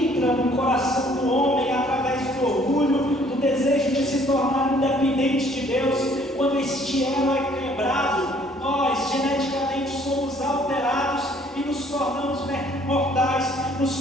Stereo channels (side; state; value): both; normal; correlation 0.60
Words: no coração do homem através do orgulho, do desejo de se tornar independente de Deus, quando este elo é quebrado, nós geneticamente somos alterados e nos tornamos mortais,